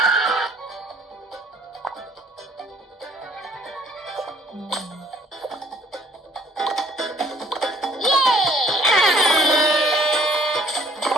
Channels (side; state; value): both; normal; correlation 0.58